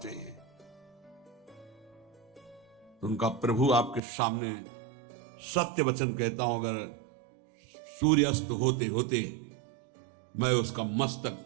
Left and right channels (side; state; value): left; drops out; at 4.0 s